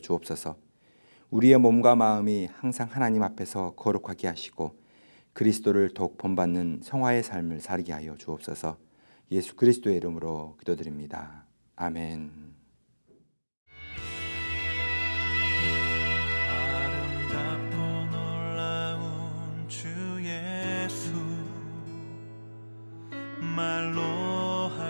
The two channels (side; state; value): both; inverted; correlation -1.00